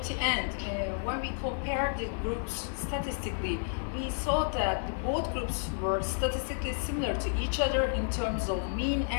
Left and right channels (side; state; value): right; silent; digital silence